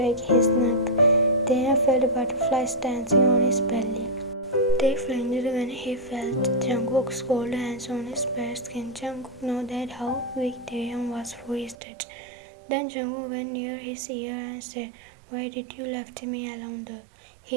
his neck. Taehyung felt butterflies dancing on his belly. Tae flinched when he felt Jungkook's cold hands on his bare skin. Jungkook knew that how weak Taehyung was for his touch. Then Jungkook went near his ear and said, "Why did you left me alone there?"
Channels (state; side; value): drops out; left; at 11.8 s